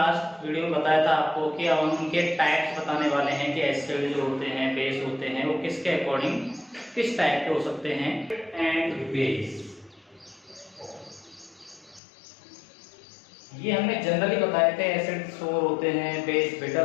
वीडियो में बताया था आपको कि अब हम उनके टाइप्स बताने वाले हैं कि एसिड जो होते हैं, बेस होते हैं, वो किसके अकॉर्डिंग किस टाइप के हो सकते हैं। एंड बेस ये हमने जनरली बताए थे, एसिड सोर होते हैं, बेस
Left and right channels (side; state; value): right; drops out; at 12.0 s